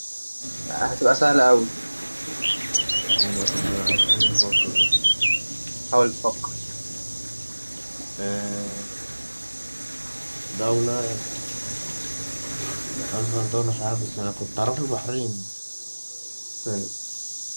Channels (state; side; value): inverted; both; correlation -1.00